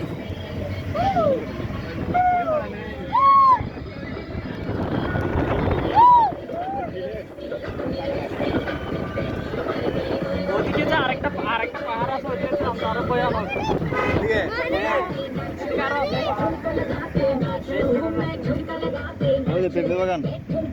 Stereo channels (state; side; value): identical; both; correlation 1.00